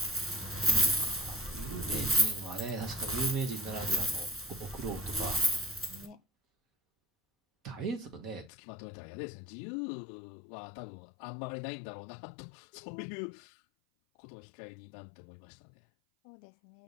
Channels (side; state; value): right; drops out; at 8.5 s